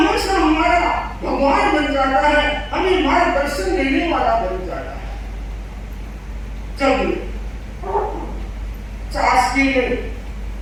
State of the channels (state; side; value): identical; both; correlation 1.00